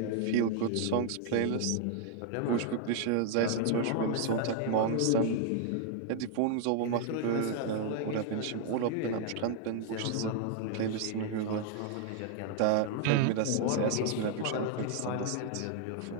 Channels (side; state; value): both; different; correlation 0.00